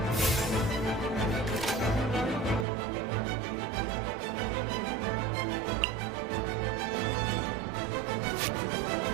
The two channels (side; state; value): left; drops out; at 2.7 s